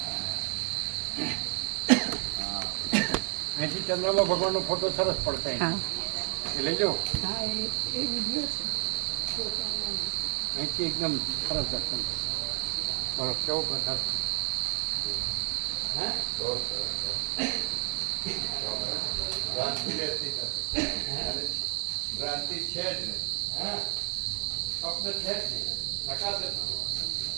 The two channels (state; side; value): quieter; left; 40.0 dB